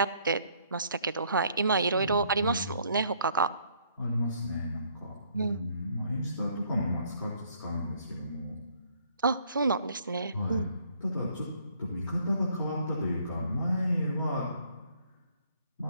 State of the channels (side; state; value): both; inverted; correlation -0.64